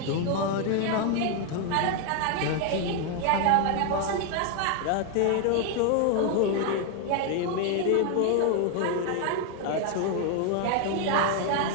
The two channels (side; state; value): both; different; correlation 0.00